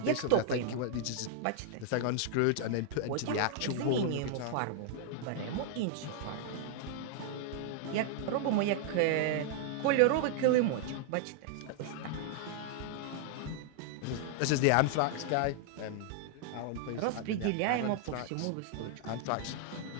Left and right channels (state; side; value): different; both; correlation -0.01